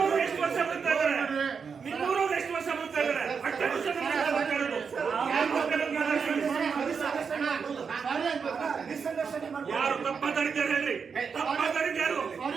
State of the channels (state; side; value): quieter; left; 5.9 dB